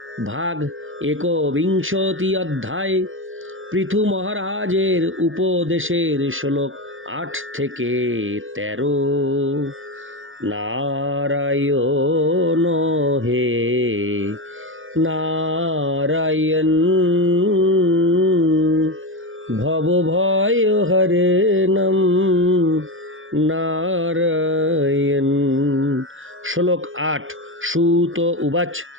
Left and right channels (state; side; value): late; left; 0.58 ms